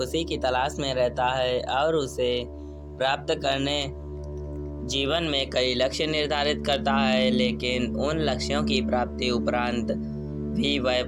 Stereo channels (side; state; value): both; identical; correlation 1.00